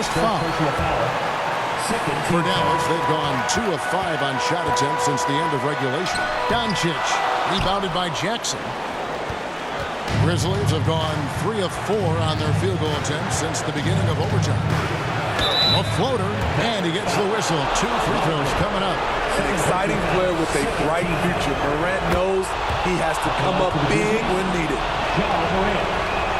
foul. For Dallas, they've gone 2 of 5 on shot attempts since the end of regulation. Doncic, rebounded by Jackson. Grizzlies have gone 3 of 4 on their field goal attempts since the beginning of overtime. A floater, and he gets the whistle. 2 free throws coming up. An exciting player with a bright future. Morant knows he has to come up big when needed.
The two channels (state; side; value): identical; both; correlation 1.00